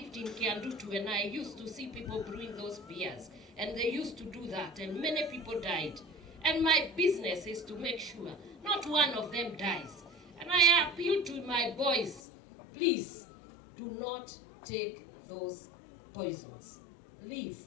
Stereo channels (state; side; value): drops out; right; at 12.2 s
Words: in Kiandutu and I used to see people brewing those beers. And they used to do that and many people died. And my business is to make sure not one of them dies. And I appeal to my boys, please do not take those poisons. Leave.